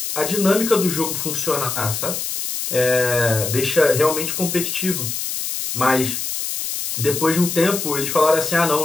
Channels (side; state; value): left; noise; hiss, 4 dB below the sound